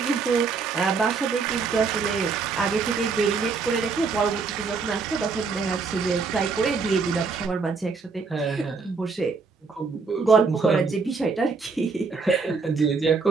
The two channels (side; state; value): left; quieter; 4.8 dB